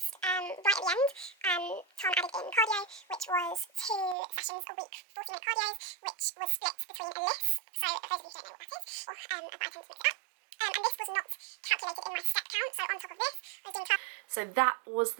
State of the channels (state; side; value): drops out; left; at 4.2 s